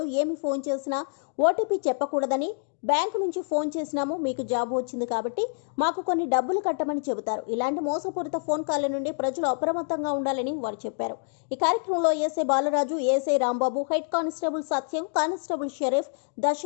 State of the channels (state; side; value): silent; right; 60 dB below the other